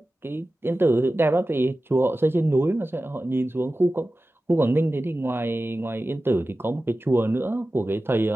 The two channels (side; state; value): both; normal; correlation 0.95